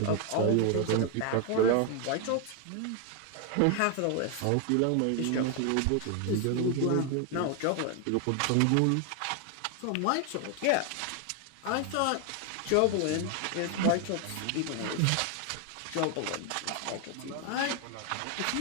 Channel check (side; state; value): both; different; correlation 0.01